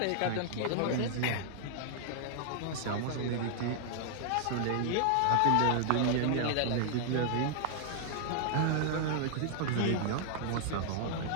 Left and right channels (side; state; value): both; different; correlation 0.00